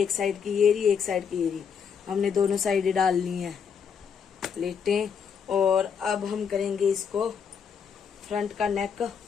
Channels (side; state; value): right; quieter; 6.9 dB